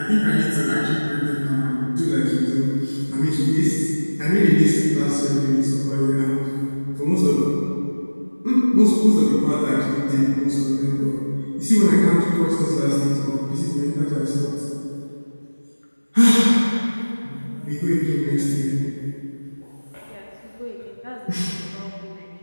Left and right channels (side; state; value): both; inverted; correlation -1.00